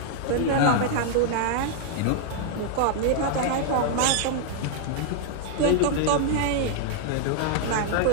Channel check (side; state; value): both; different; correlation -0.01